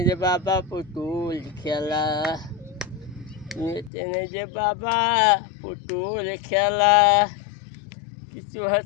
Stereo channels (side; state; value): right; drops out; at 3.9 s